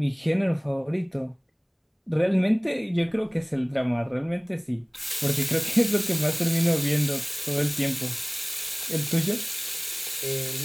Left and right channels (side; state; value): both; identical; correlation 1.00